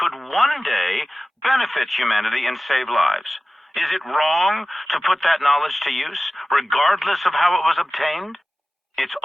one day benefit humanity and save lives? Is it wrong to put that knowledge to use, regardless of how it was obtained? It's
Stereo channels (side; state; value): both; normal; correlation 0.96